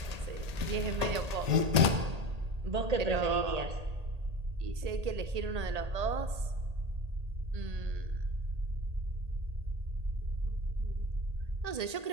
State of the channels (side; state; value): left; late; 1.8 ms